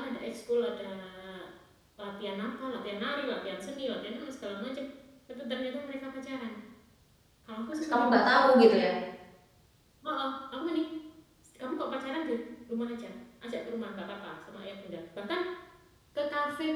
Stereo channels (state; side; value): identical; both; correlation 1.00